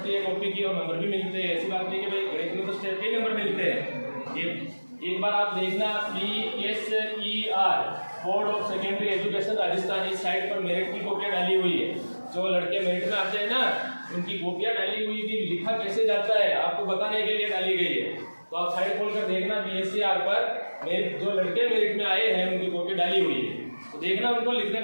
है कॉपी की, और नंबर भी मिलते हैं। ऐसी बात नहीं कि भाई गणित में तो स्टेट के नंबर मिलते हैं। ये एक बार आप देखना PSER board of secondary education Rajasthan, इस साइट पर मेरिट की कॉपियां डाली हुई है। जो लड़के मेरिट में आते हैं ना, उनकी कॉपियां डाली हुई थी, लिखा कैसे जाता है आपको बताने के लिए डाली गई है। तो आप साइट खोलकर देखना PSER पर जो लड़के मेरिट में आए हैं उनकी कॉपी डाली हुई है, तो देखना उनको लिखने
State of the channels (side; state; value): both; inverted; correlation -1.00